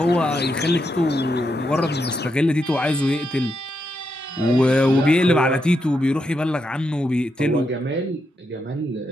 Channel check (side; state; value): both; normal; correlation 0.82